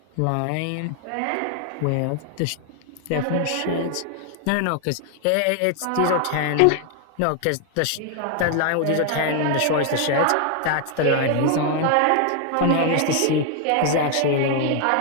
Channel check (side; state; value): both; different; correlation 0.00